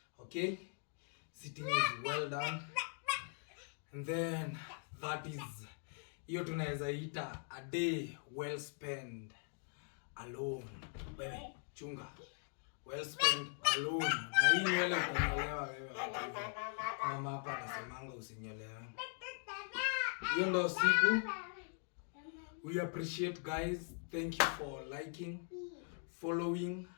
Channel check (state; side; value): silent; right; 51 dB below the other